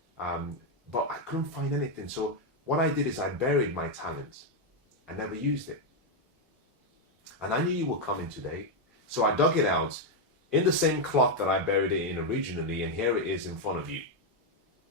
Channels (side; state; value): both; normal; correlation 0.02